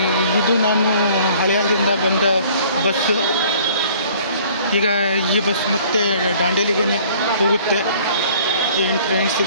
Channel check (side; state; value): both; inverted; correlation -0.54